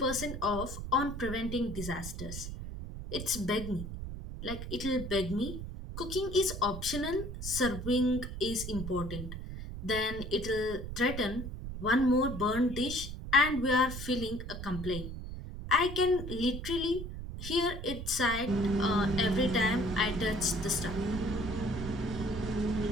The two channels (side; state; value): right; noise; rumble, 8 dB below the sound